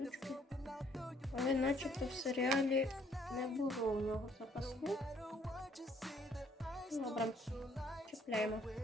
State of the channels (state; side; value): normal; both; correlation 0.64